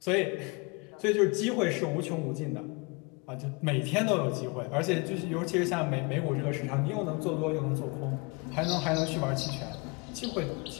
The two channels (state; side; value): quieter; right; 29.7 dB